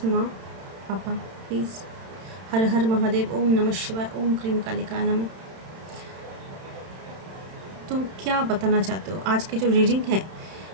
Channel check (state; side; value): late; left; 31 ms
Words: माँ पापा प्लीज़। हर हर महादेव, ओम नमः शिवाय, ओम क्रीम कालिकाय नमः। तो क्या बताना चाहते हो? आज की जो रीडिंग है